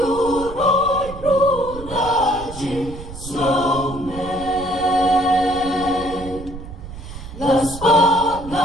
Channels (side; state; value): right; noise; rumble, 13 dB below the sound